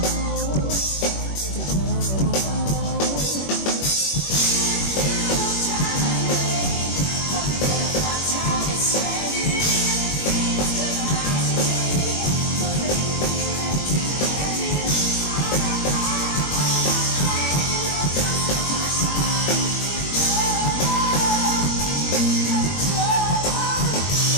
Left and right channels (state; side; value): late; right; 21 ms